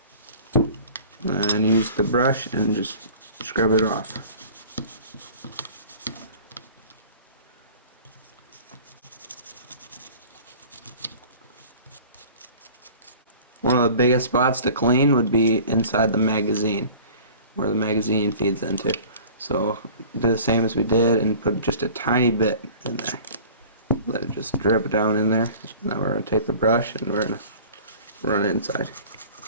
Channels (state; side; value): inverted; both; correlation -0.44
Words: And use the brush and just scrub it off. One of the biggest spots to clean would be inside the magazine, where the magazine feeds into. So do the same as we did and put just a tiny bit in there. Let it just drip down in there. Now we're going to take the brush and we're going to run it inside.